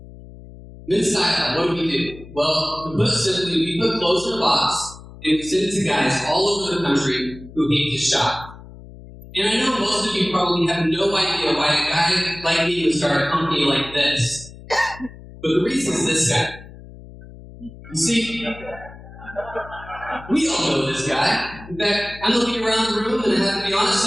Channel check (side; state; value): left; noise; hum, 17 dB below the sound